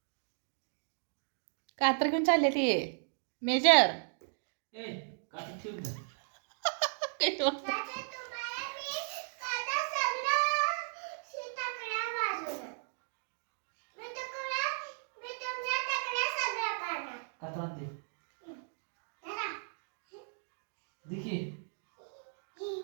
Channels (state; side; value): silent; left; digital silence